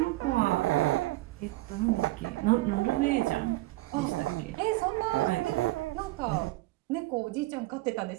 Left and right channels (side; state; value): left; quieter; 19.8 dB